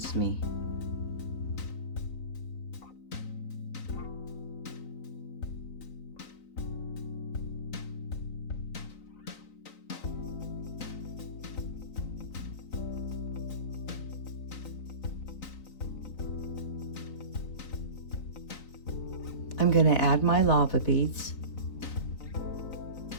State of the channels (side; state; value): right; late; 3.9 ms